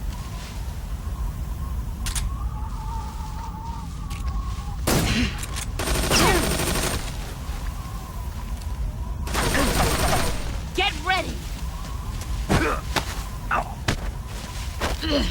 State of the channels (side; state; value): both; identical; correlation 1.00